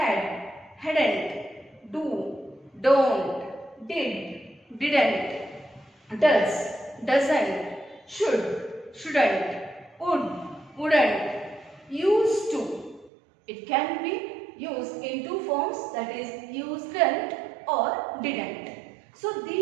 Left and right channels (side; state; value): left; drops out; at 13.1 s